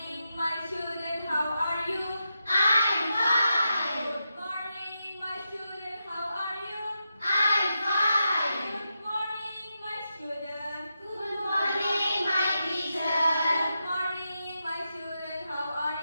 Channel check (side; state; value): both; inverted; correlation -0.87